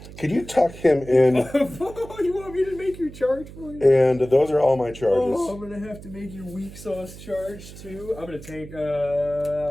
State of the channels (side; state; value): right; noise; hum, 16 dB below the sound